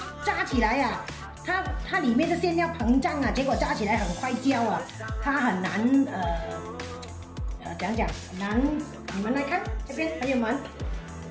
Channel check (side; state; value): both; identical; correlation 1.00